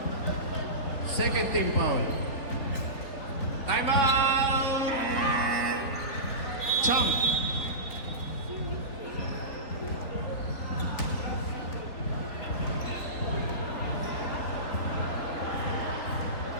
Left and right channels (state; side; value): late; right; 4.0 ms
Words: Second team foul. Timeout! Chump.